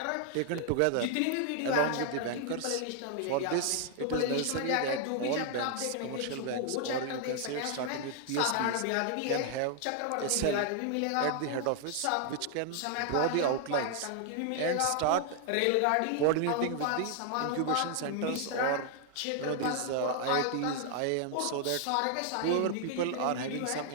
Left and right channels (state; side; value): different; both; correlation 0.00